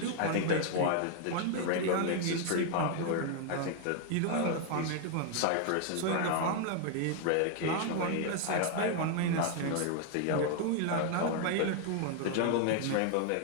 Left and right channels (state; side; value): different; both; correlation 0.00